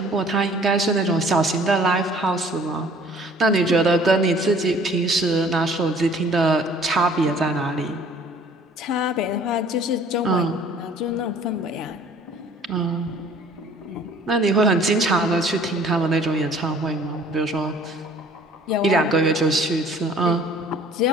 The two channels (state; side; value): normal; both; correlation 0.54